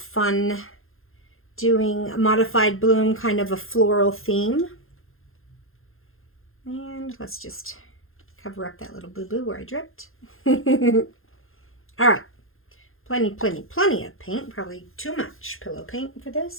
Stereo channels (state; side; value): late; right; 0.60 ms